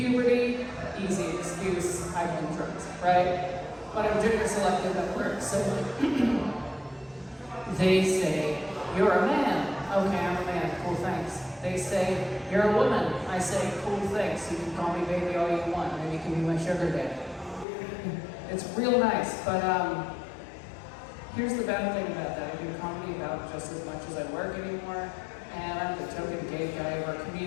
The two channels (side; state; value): right; drops out; at 17.7 s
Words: easy excuse, I've been drugs, right? But I'm gender selective at work, so they say, you're a man. Okay, I'm a man, cool, thanks. They say, you're a woman. I say, cool, thanks. You can call me baby all you want. Maybe you can be my sugar daddy. It's real nice, but here's the bad thing about that. I do comedy about just as much as I work anymore, and I'm the token gay guy of our